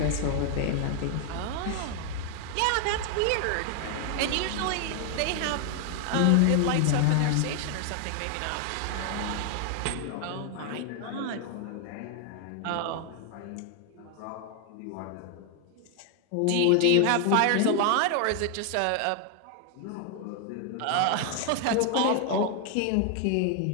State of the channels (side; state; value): both; different; correlation 0.00